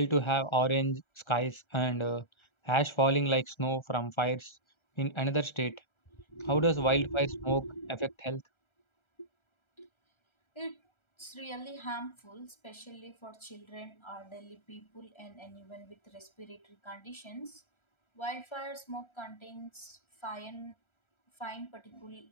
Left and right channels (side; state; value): right; late; 1.3 ms